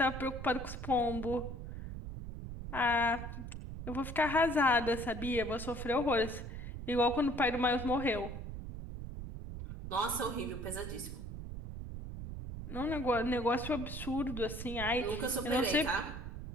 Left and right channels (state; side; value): noise; right; rumble, 8 dB below the sound